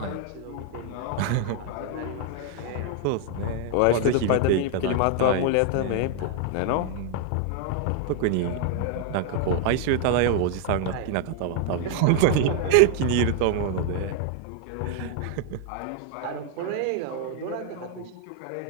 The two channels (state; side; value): different; both; correlation 0.00